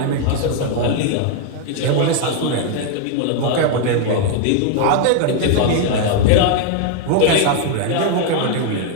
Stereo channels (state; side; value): different; both; correlation 0.00